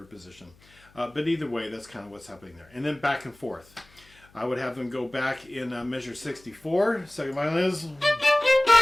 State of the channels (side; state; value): left; noise; hum, 28 dB below the sound